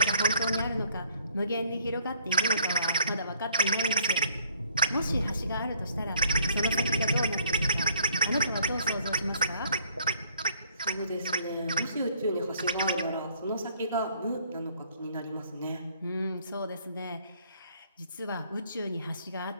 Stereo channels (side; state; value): both; inverted; correlation -0.63